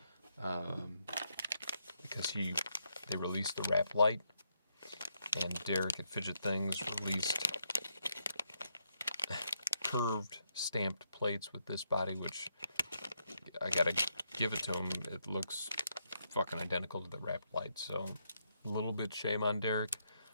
Because they released the wrap light, and Derek at Fidget Things released curved stamped plates with this body, which I gotta give it to him. It looks fucking identical to the wrap light, so a little bit shame on Derek,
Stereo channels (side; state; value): both; inverted; correlation -0.79